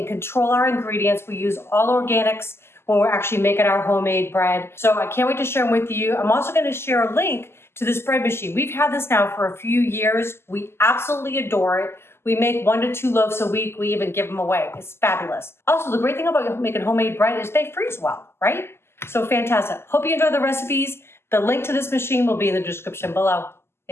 control our ingredients. We use all organics when we're actually making our homemade bread. So I can't wait to share them with you. I'm also going to share a link to this bread machine. We've had this now for a few years. We absolutely adore it. We make 1 to 2 loaves a week. We even give them away. It's fabulous. Also, the great thing about making homemade bread is they freeze well, right? So fantastic. Hope you enjoy the recipes. The link to this machine will be in the description below.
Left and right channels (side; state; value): right; late; 0.12 ms